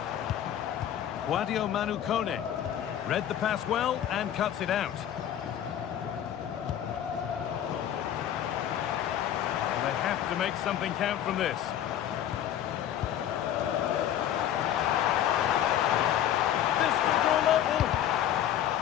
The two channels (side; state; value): right; quieter; 10.8 dB